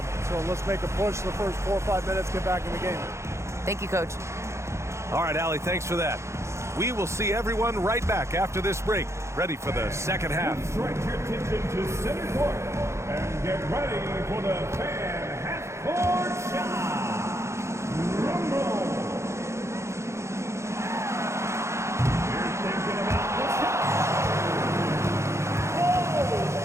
let's make a push the first 4 or 5 minutes, get back in the game. Thank you, Coach. All right, Allie, thanks for that. We will see everyone right back after this break, ready for the second half. Direct your attention to center court and get ready for the fan half-court shot. Rumble. You're thinking about the shot.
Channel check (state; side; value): late; left; 0.14 ms